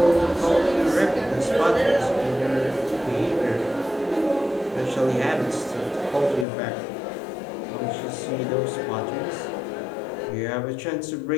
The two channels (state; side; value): drops out; right; at 6.5 s